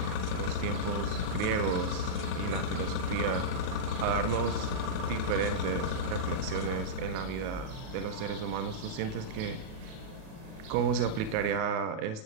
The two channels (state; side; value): late; left; 37 ms